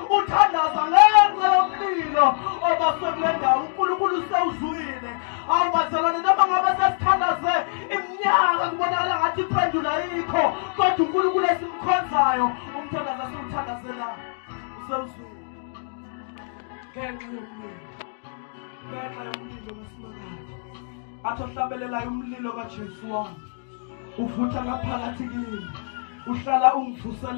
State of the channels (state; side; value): silent; right; digital silence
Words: uthandaza ngenxa yomlilo obaswe kule ndawo. uNkulunkulu usewuzwile. Awubazalwane noma ngabe sesithandaze iminyaka kubonakala ngathi iphendula yikho, kodwa uNkulunkulu esimkhonzayo umthandazo esiwuthandazela usewuzwile ngenxa yomlilo. Ngenxa yomlilo kaSimakade athi ohlabelelayo umlilo kaJesu wami uvutha ngaphakathi kimi, uhlala